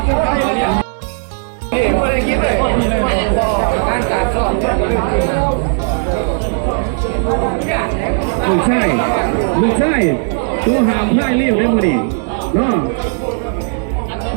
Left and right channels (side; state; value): left; silent; 65 dB below the other